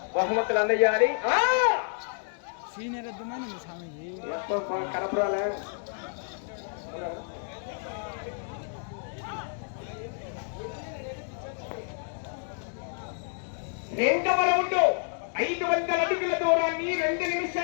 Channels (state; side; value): silent; right; 58 dB below the other